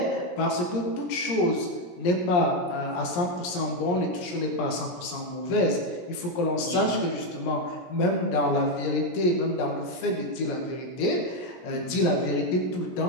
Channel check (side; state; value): right; late; 17 ms